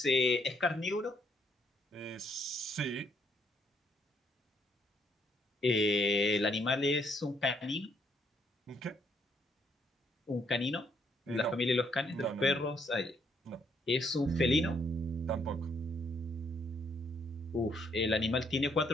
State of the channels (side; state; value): both; normal; correlation 0.71